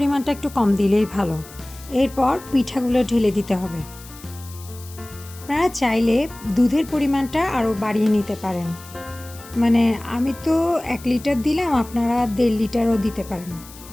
একটু কম দিলেই ভালো। এরপর পিঠাগুলো ঢেলে দিতে হবে। আপনারা চাইলে দুধের পরিমাণটা আরও বাড়িয়ে নিতে পারেন। মানে আমি তো 1 লিটার দিলাম, আপনারা 1.5 লিটারও দিতে পারেন।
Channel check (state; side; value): noise; left; hiss, 19 dB below the sound